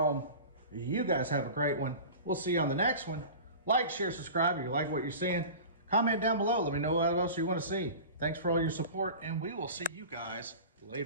you guys have a great one. We'll see you on the next one. Like, share, subscribe if you like what you're seeing. Comment down below. Let me know what else you want to see. Thanks for all your support, and we will see you guys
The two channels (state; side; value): inverted; both; correlation -0.35